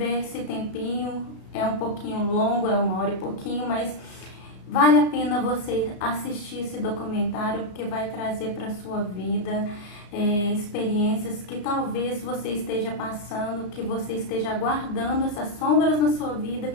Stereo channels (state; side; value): late; right; 34 ms